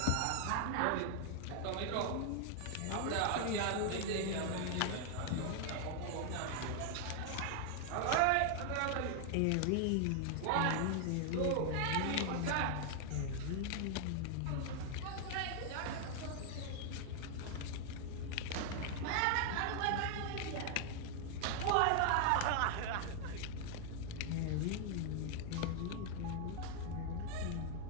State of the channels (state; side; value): different; both; correlation 0.00